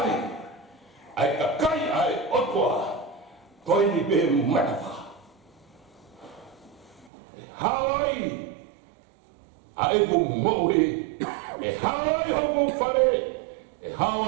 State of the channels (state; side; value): drops out; left; at 7.1 s